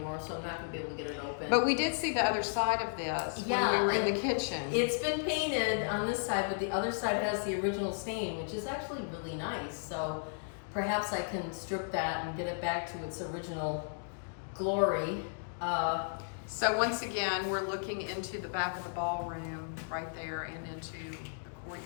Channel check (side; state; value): right; silent; digital silence